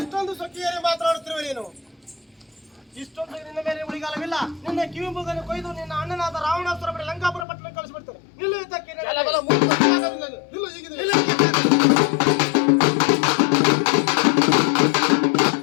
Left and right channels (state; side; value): drops out; right; at 7.5 s